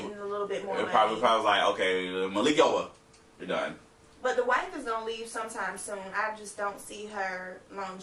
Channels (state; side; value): identical; both; correlation 1.00